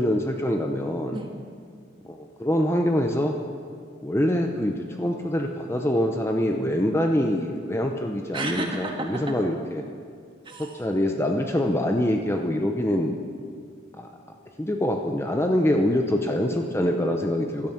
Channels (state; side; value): normal; both; correlation 0.77